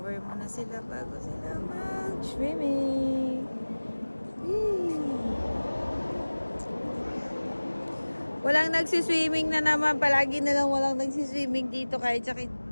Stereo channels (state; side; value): inverted; both; correlation -1.00